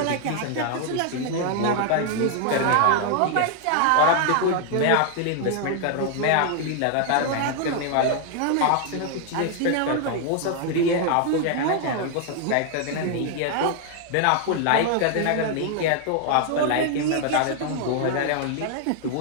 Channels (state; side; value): different; both; correlation 0.00